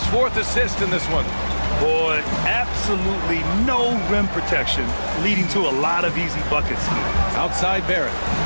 4th assist in this one. Boy, absolutely no rim protection, leading to a lot of easy buckets. Outside Barrett.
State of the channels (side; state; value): both; inverted; correlation -1.00